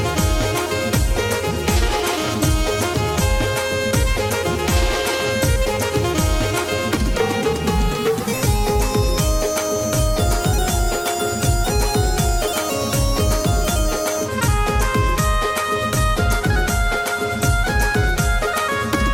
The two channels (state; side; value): identical; both; correlation 1.00